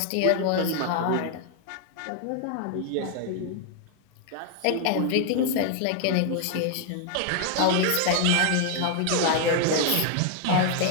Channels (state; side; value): different; both; correlation 0.00